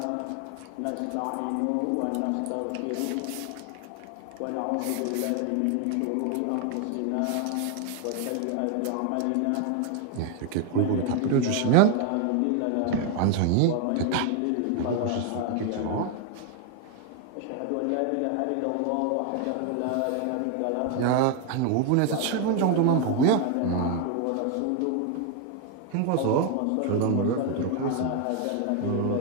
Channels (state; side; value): different; both; correlation 0.01